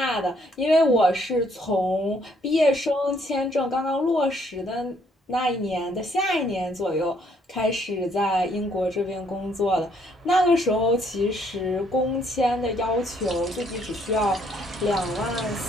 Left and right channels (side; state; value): both; normal; correlation 0.67